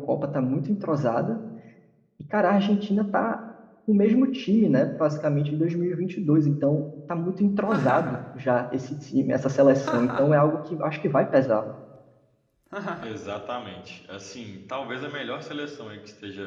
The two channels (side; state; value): both; identical; correlation 1.00